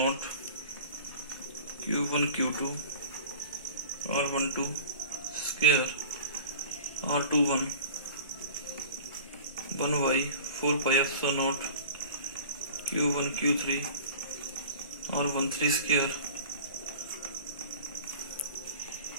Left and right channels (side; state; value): both; inverted; correlation -0.40